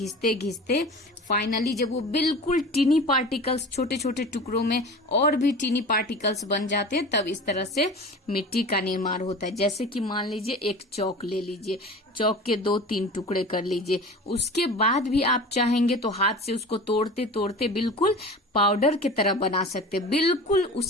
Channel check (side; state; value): both; normal; correlation 0.36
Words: घिसते फाइनली जब वो बिल्कुल टीनी पार्टिकल्स, छोटे छोटे टुकड़ों में और भी टीनी पार्टिकल्स बन जाते हैं, तब इस तरह से मिट्टी का निर्माण होता है. जैसे कि मान लीजिए एक चौक ले लीजिए, चौक के 2-3 टुकड़े कर लीजिए, उसके बाद भी आप चाहेंगे तो हाथ से उसको तोड़ते तोड़ते बिल्कुल पाउडर की तरह बना सकते. बिल्कुल